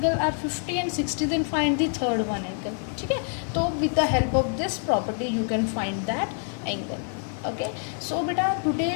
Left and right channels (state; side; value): silent; right; 58 dB below the other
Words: are 50 and 60 then find the third one angle, ठीक है। तो with the help of this property you can find that angle, okay। So beta today